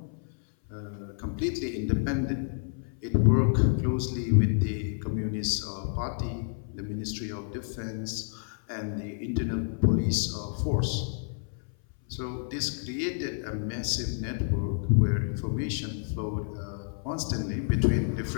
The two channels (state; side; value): silent; right; 57 dB below the other